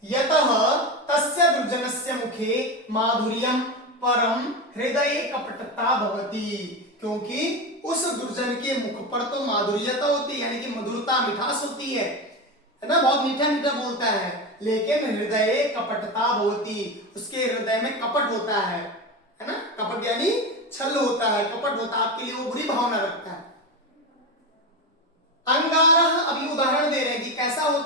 यतः तस्य दुर्जनस्य मुखे माधुर्यम परम हृदये कपटता भवति, क्योंकि उस दुर्जन के मुख पर तो माधुर्यता होती है, यानी कि मधुरता, मिठास होती है ना, बहुत मीठा मीठा बोलता है, लेकिन हृदय कपटता भवति, उसके हृदय में कपट होता है ना, कपट यानी छल होता है, कपट होता है, आपके लिए वो बुरी भावना रखता है। अंगारः, अभी उदाहरण दे रहे हैं कि कैसा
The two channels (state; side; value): normal; both; correlation 0.19